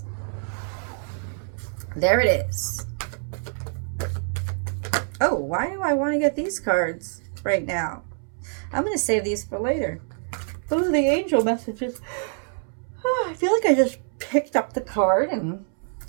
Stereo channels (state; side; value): silent; left; 61 dB below the other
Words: There it is. Oh, why do I want to get these cards right now? I'm going to save these for later. Oh, the angel messages. Oh, I feel like I just picked up the card, and